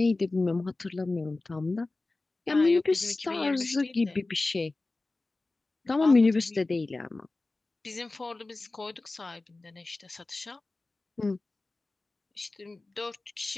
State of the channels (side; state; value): right; quieter; 3.2 dB